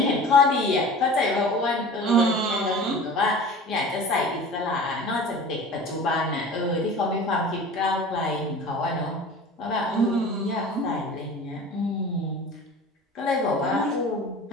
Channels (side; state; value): both; normal; correlation 0.39